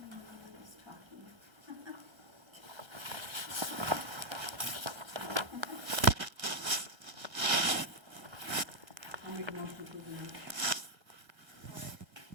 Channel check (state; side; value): late; left; 1.3 ms